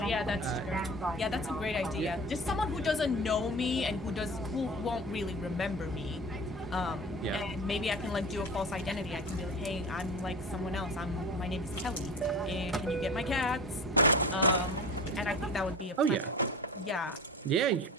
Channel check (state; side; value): normal; both; correlation 0.35